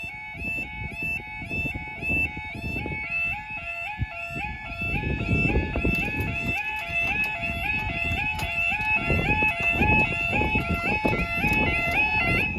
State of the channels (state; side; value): identical; both; correlation 1.00